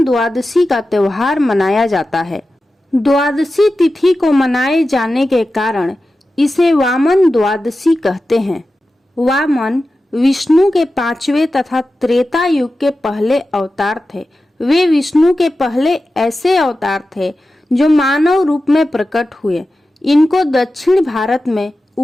द्वादशी का त्योहार मनाया जाता है। द्वादशी तिथि को मनाए जाने के कारण इसे वामन द्वादशी कहते हैं। वामन विष्णु के 5वें तथा त्रेता युग के पहले अवतार थे। वे विष्णु के पहले ऐसे अवतार थे जो मानव रूप में प्रकट हुए। इनको दक्षिण भारत में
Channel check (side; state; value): both; normal; correlation 0.93